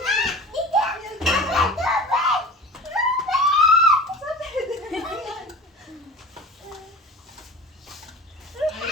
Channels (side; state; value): both; normal; correlation 0.36